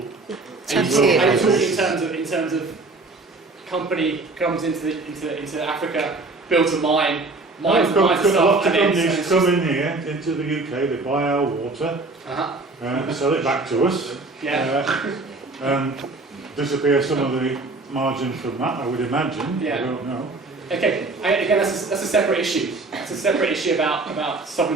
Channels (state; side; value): quieter; left; 3.4 dB